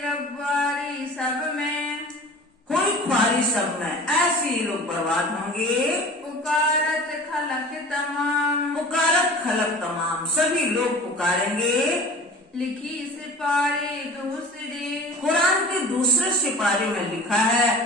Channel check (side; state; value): both; normal; correlation 0.40